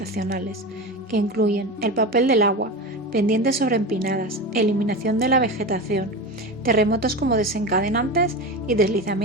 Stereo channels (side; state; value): both; normal; correlation 0.24